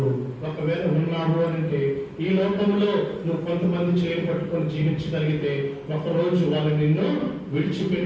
ఒకవేళ ఉన్నావు అంటే ఈ లోకంలో నువ్వు కొంతమంది చేయి పట్టుకొని జీవించగలిగితే ఒకరోజు వాళ్ళు నిన్ను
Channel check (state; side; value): identical; both; correlation 1.00